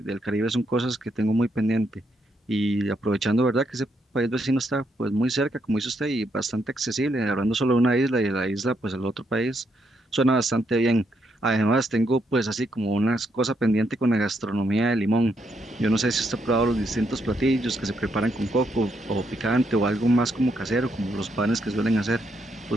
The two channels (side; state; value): both; normal; correlation 0.77